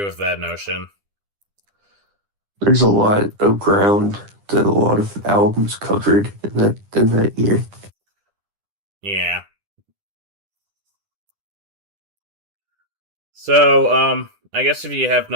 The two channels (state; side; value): late; left; 10 ms